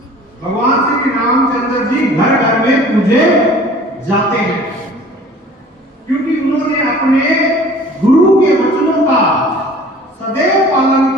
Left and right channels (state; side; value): normal; both; correlation 0.47